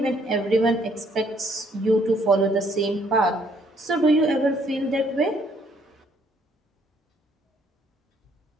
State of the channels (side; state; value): both; normal; correlation 0.67